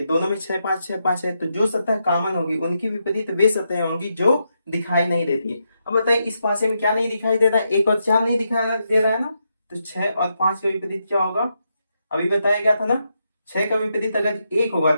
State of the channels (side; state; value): both; inverted; correlation -0.83